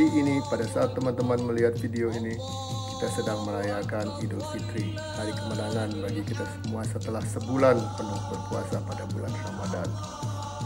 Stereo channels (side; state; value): both; identical; correlation 1.00